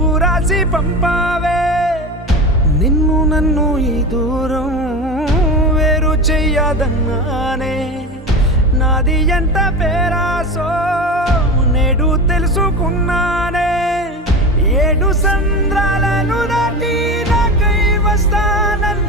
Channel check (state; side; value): normal; both; correlation 0.26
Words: రాసి పంపావే. నిన్ను నన్ను ఈ దూరం వేరు చెయ్యదన్నానే, నాది ఎంత పేరాసో నేడు తెలుసుకున్నానే. 7 సంద్రాలను దాటి నాకై